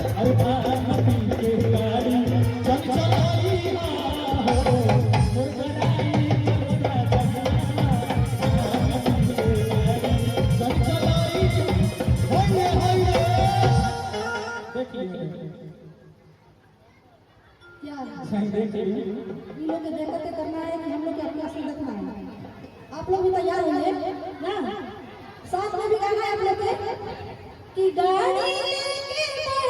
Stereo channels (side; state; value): both; identical; correlation 1.00